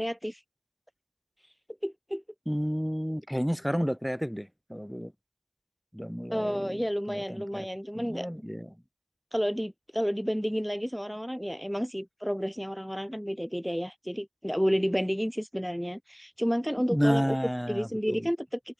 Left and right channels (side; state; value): both; identical; correlation 1.00